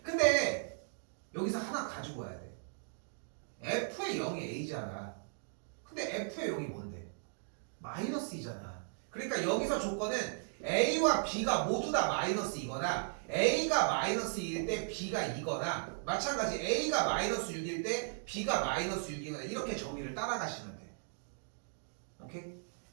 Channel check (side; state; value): left; silent; digital silence